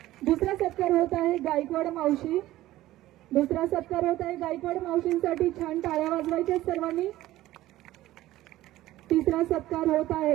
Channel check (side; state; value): left; quieter; 15.6 dB